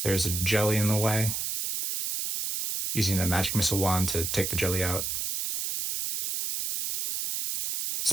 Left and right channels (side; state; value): right; noise; hiss, 2 dB below the sound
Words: There's a jelly in the way. Using a magic missile wand to take the jelly out.